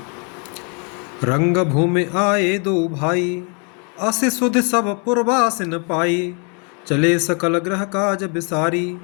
रंग भूमि आए दो भाई, अस सुध सब पुरवासिन पाई। चले सकल ग्रह काज बिसारी,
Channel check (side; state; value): right; quieter; 36.3 dB